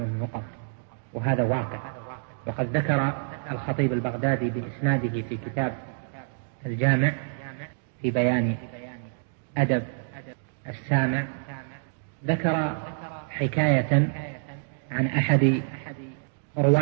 وهذا واقع. وقد ذكر الخطيب البغدادي بإسناده في كتاب الجامع في بيان أدب السامع، ذكر حكاية عن أحد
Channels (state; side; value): silent; left; digital silence